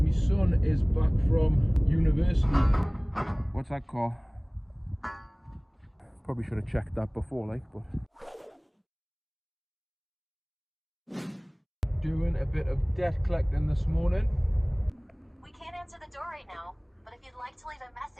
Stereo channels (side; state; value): both; identical; correlation 1.00